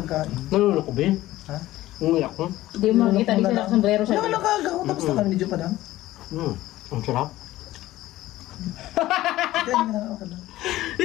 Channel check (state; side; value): quieter; right; 15.9 dB